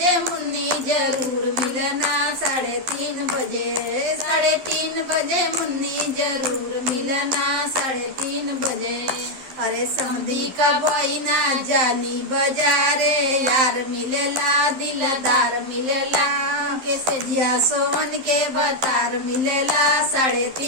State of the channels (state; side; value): late; left; 12 ms